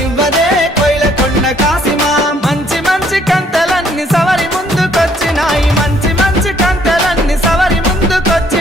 కోయిలకొండ కాసిమా మంచి మంచి కంతలన్నీ సవరి ముందుకొచ్చినాయి మంచి మంచి కంతలన్నీ సవరి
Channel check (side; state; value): both; normal; correlation 0.65